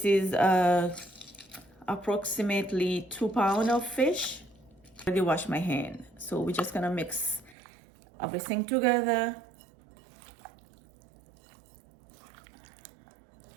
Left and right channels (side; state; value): left; drops out; at 7.6 s